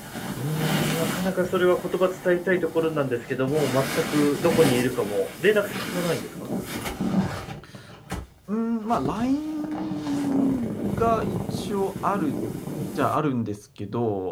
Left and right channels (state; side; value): identical; both; correlation 1.00